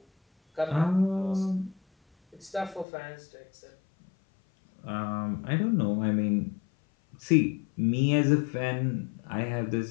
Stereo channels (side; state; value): right; drops out; at 2.9 s